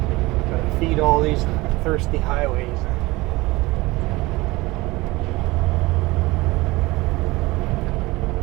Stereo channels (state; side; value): quieter; left; 21.1 dB